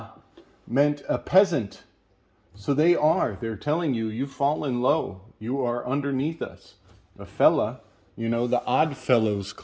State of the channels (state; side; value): identical; both; correlation 1.00